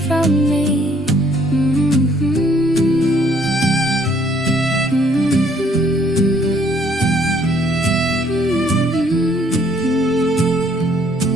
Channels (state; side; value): normal; both; correlation 0.64